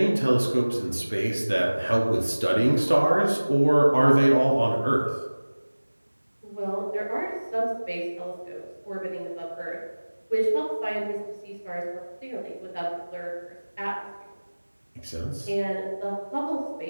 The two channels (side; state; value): both; inverted; correlation -1.00